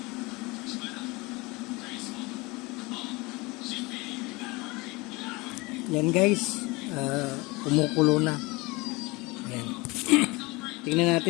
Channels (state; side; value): quieter; right; 24.2 dB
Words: Yan guys, kumukulo na. Yan. Tingnan